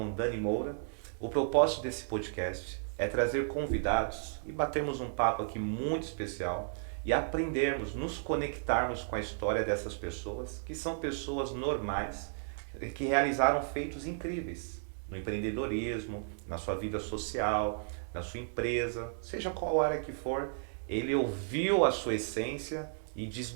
Dani Moura. O propósito desse podcast é trazer convidados e batermos um papo aqui muito especial e aprendermos, nos conectarmos com a história dessas pessoas, que são pessoas normais, que realizaram feitos incríveis no empreendedorismo, na sua vida social, na sua empresa, seja qual área que for, ele ouviu a sua essência e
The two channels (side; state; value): left; silent; digital silence